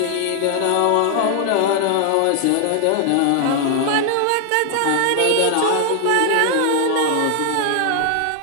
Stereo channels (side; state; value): both; different; correlation 0.00